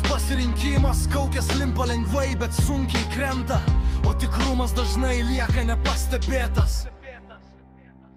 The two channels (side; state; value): both; identical; correlation 1.00